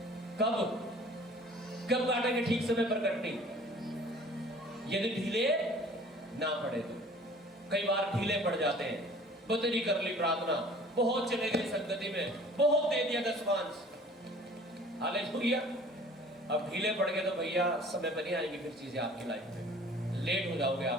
कब काटेंगे ठीक समय पर कटनी? यदि ढीले ना पड़े तो। कई बार ढीले पड़ जाते हैं, बदली कर ली प्रार्थना, बहुत चले गए संगति में, बहुत दे दिया दशमांश, हालेलुया। अब ढीले पड़ गए तो भैया समय पर नहीं आएंगी फिर चीजें आपकी लाइफ में, लेट हो जाओगे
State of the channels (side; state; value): both; normal; correlation 0.49